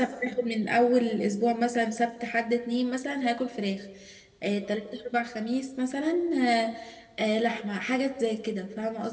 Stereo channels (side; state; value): both; identical; correlation 1.00